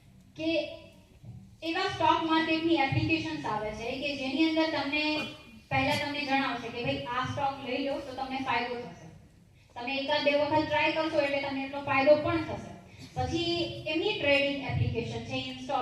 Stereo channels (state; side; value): identical; both; correlation 1.00